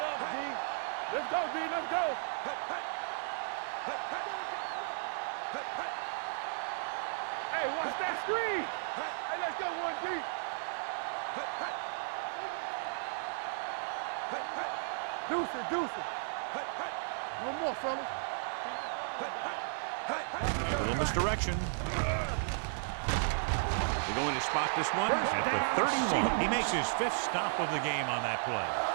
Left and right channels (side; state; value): left; silent; digital silence